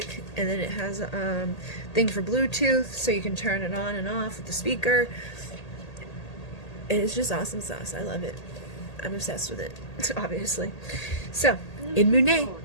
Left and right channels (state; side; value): late; right; 1.8 ms